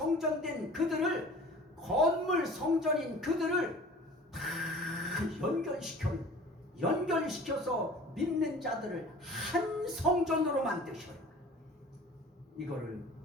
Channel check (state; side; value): normal; both; correlation 0.44